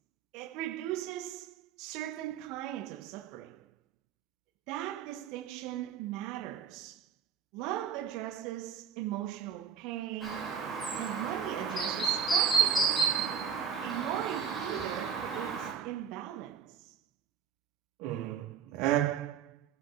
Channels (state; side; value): quieter; left; 7.2 dB